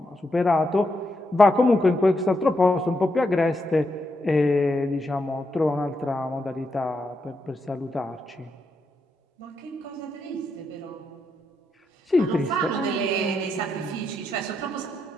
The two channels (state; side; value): normal; both; correlation 0.82